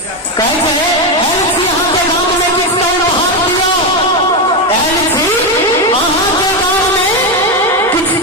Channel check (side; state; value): both; normal; correlation 0.10